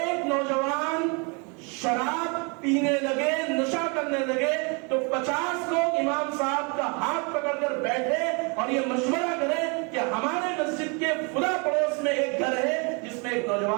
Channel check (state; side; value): quieter; left; 33.1 dB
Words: نوجوان شراب پینے لگے, نشہ کرنے لگے, تو 50 لوگ امام صاحب کا ہاتھ پکڑ کر بیٹھے اور یہ مشورہ کریں کہ ہمارے مسجد کے فلاں پڑوس میں ایک گھر ہے جس میں ایک